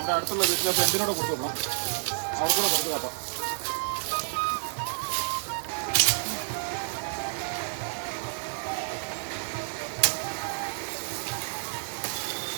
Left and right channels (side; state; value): left; silent; 58 dB below the other